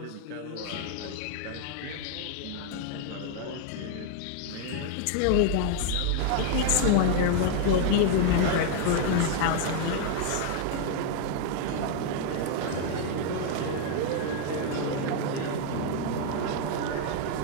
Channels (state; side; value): different; both; correlation 0.00